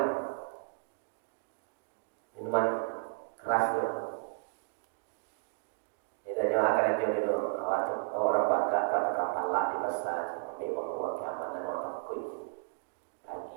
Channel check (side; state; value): left; silent; digital silence